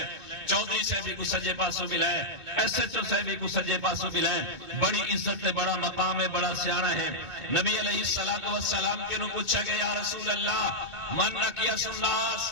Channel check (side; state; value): left; late; 2.2 ms